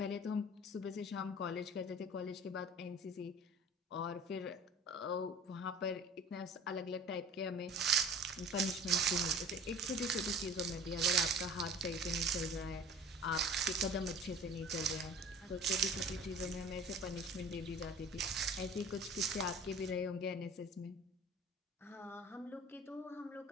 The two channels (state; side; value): normal; both; correlation 0.43